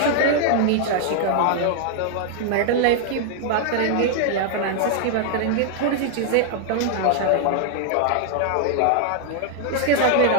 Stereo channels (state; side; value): different; both; correlation 0.00